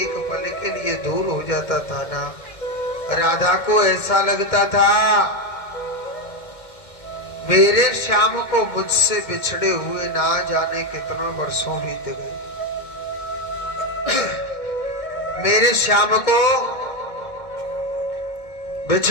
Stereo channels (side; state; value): right; late; 1.6 ms